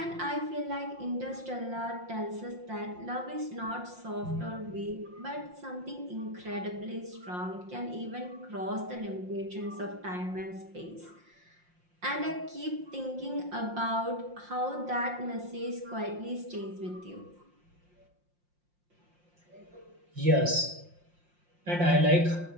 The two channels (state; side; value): late; left; 5.6 ms